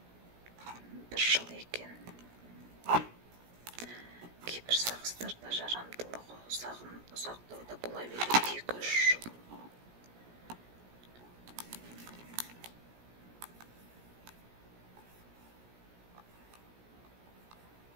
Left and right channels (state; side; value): late; left; 17 ms